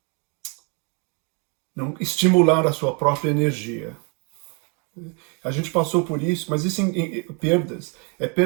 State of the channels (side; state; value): left; quieter; 35.2 dB